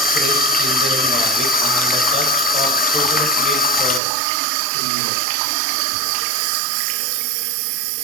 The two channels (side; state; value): left; drops out; at 4.0 s